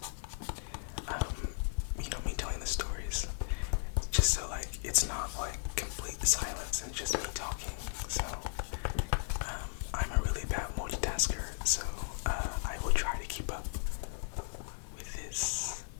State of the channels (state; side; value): silent; right; 54 dB below the other